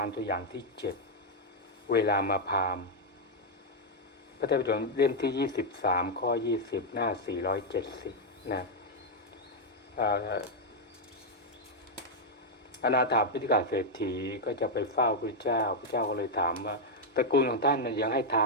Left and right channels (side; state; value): both; normal; correlation 0.00